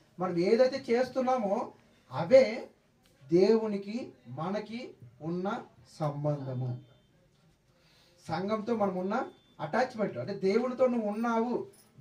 మనం ఏదైతే చేస్తున్నామో అవే దేవునికి మనకి ఉన్న సంబంధము. సంఘంతో మనం ఉన్న అటాచ్మెంట్, అంటే దేవునితో నువ్వు ఉన్నావు,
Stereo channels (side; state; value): both; identical; correlation 1.00